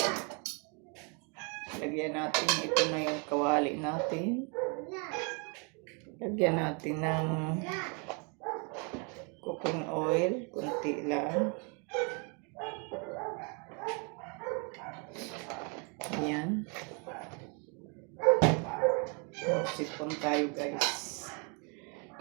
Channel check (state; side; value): quieter; left; 35.2 dB